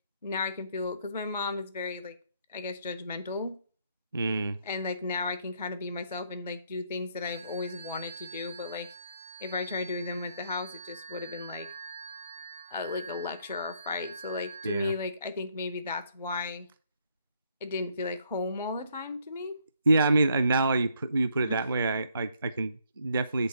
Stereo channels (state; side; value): inverted; both; correlation -0.70